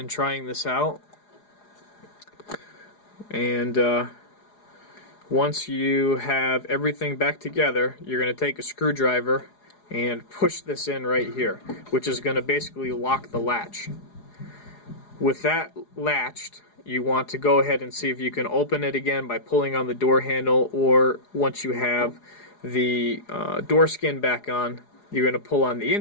trying this out, and once you have everything back together, you're going to take a screwdriver and push this in right here, which is going to basically lock the latch. With that latched, you want to go ahead and see if you can open it again by pulling on the door handle, or once you have the door skin back on, you're going to pull on the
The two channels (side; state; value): right; late; 4.8 ms